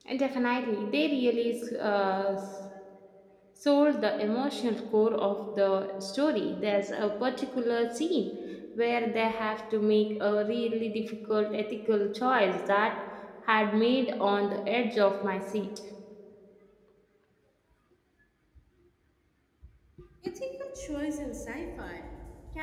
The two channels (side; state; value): both; identical; correlation 1.00